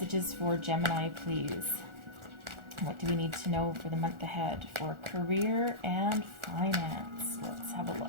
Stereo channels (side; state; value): left; late; 1.4 ms